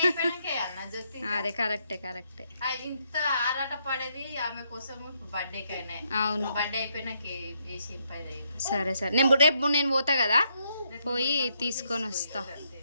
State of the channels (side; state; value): both; inverted; correlation -0.76